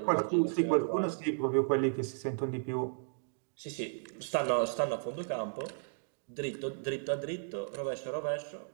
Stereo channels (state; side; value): silent; left; digital silence